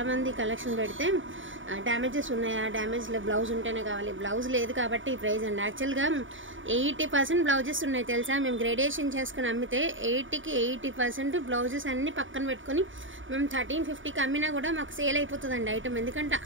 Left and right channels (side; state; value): left; late; 0.57 ms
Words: కలెక్షన్ పెడితే డ్యామేజెస్ ఉన్నాయా, డ్యామేజ్ బ్లౌజ్ ఉంటేనే కావాలి, బ్లౌజ్ లేదు కాబట్టి ఈ ప్రైస్ అండి. యాక్చువల్గా 80% బ్లౌజెస్ ఉన్నాయి తెలుసా. మేము గ్రేడేషన్ చేసుకుని అమ్మితే 80కి 80% బ్లౌజెస్ అన్ని పక్కన పెట్టుకొని మేము 1350కి అమ్మినా కూడా మాకు సేల్ అయిపోతుందండి ఐటమ్. ఎందుకంటే